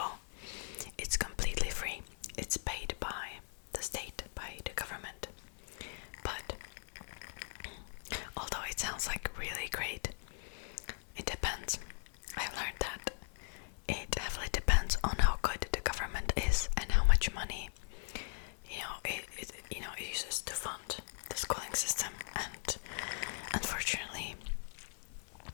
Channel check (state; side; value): silent; right; 52 dB below the other